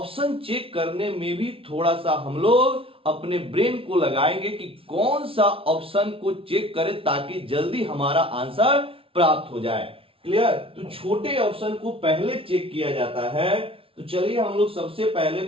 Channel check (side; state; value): left; late; 0.26 ms